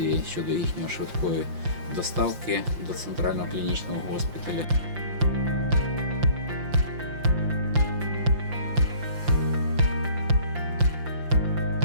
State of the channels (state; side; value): late; left; 5.8 ms